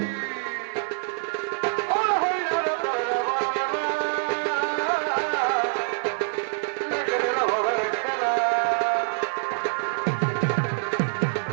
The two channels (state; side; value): silent; left; 61 dB below the other